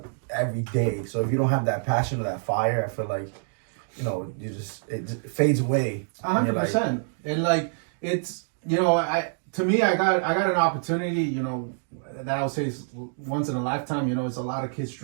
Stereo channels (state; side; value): silent; left; digital silence